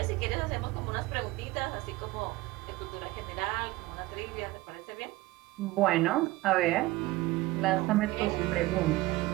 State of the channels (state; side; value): quieter; left; 19.1 dB